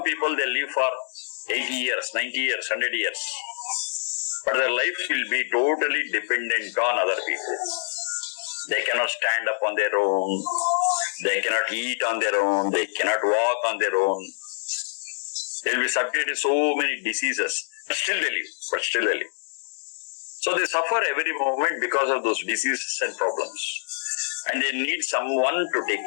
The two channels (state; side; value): silent; right; digital silence